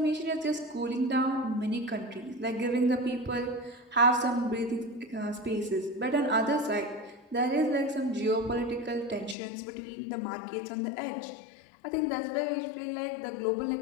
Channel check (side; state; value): right; drops out; at 9.3 s